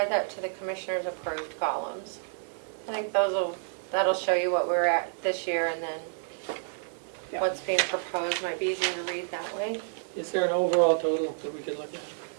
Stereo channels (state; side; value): silent; left; digital silence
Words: that to the commissioner's approved columns. I think that'll show you what we're at this year and then Yep. what's being proposed might be easier to read that way. Is there an overall total that we could look at?